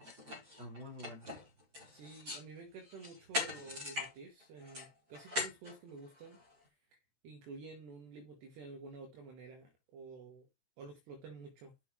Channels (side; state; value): left; late; 14 ms